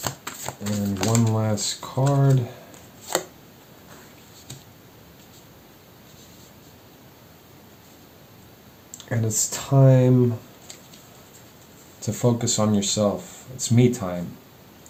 And one last card. And it's time to focus on yourself. It's me time.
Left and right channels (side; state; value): both; identical; correlation 1.00